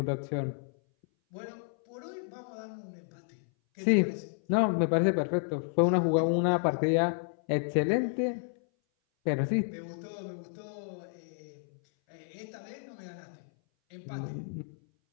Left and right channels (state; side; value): silent; right; 57 dB below the other